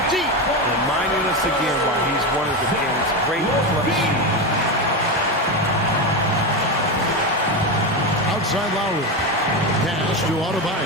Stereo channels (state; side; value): normal; both; correlation 0.15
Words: deep. Reminding us again why he's one of the game's great clutch shooters. Outside Lowry. Pass to